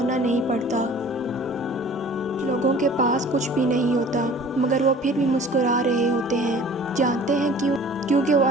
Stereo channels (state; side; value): normal; both; correlation 0.47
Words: نہیں پڑتا۔ لوگوں کے پاس کچھ بھی نہیں ہوتا، مگر وہ پھر بھی مسکرا رہے ہوتے ہیں، جانتے ہیں کیوں؟ کیونکہ وہ